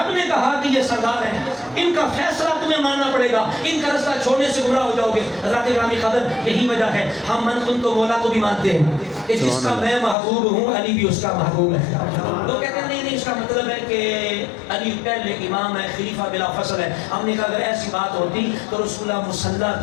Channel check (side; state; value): right; drops out; at 10.2 s